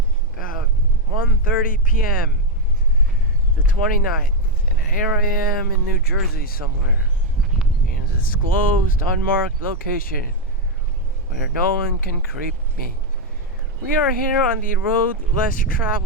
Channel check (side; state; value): both; normal; correlation 0.03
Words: about 1:30 p.m., the 29th, and here I am in New Jersey somewhere, in a disclosed, unmarked location, where no one can creep me. We are here on the road less